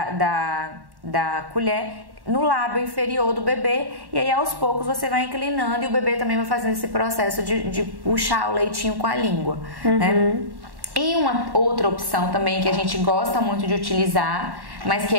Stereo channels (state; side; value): late; left; 1.1 ms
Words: colher no lábio inferior do bebê, e aí aos poucos você vai inclinando e o bebê também vai fazendo esse processo de puxar o leitinho com a língua, né? E uma outra opção também que a gente gosta muito de utilizar, mas que